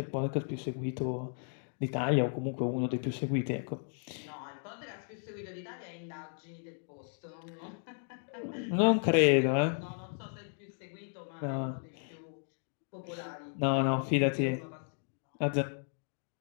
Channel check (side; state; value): right; silent; 55 dB below the other